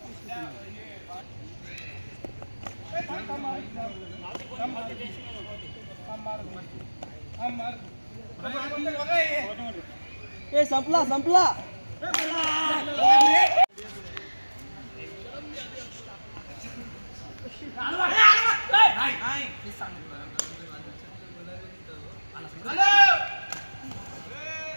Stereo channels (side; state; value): both; inverted; correlation -1.00